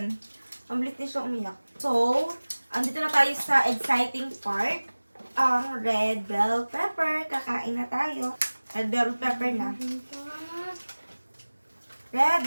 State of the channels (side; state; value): both; inverted; correlation -1.00